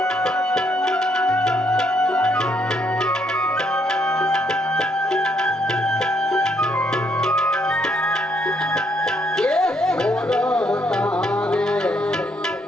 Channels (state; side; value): normal; both; correlation 0.72